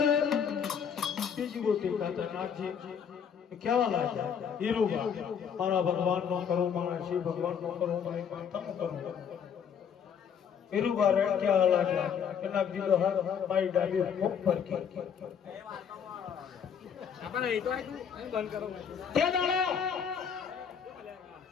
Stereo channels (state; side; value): quieter; right; 7.5 dB